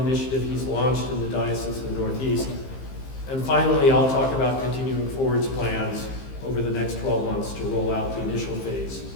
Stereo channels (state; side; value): late; right; 15 ms